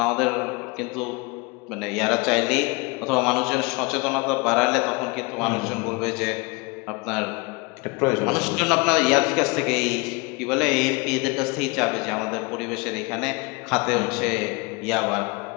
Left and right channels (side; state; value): right; quieter; 27.6 dB